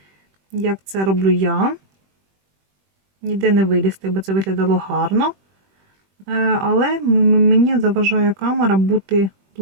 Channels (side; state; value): left; late; 21 ms